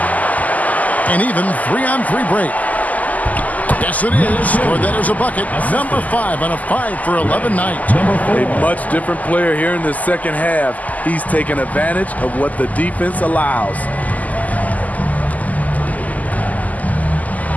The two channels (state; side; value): late; right; 0.077 ms